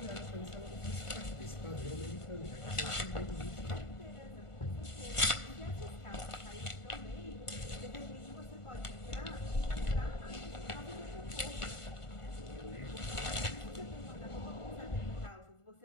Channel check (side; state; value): right; late; 1.5 ms